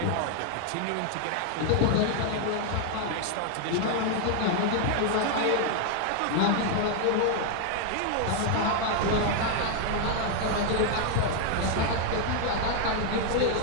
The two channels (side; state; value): both; different; correlation 0.00